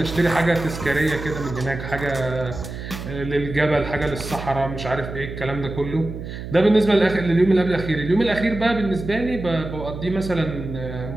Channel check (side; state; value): right; noise; hum, 9 dB below the sound